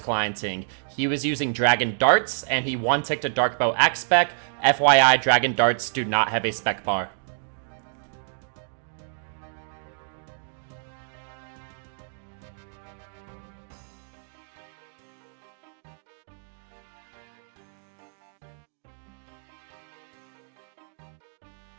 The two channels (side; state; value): left; silent; digital silence